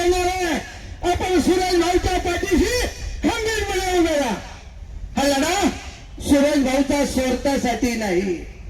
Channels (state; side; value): identical; both; correlation 1.00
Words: आहे, आपण सुरेश भाऊच्या पाठीशी खंबीरपणे उभे राहा। हा लढा सुरेश भाऊचा स्वार्थासाठी नाही,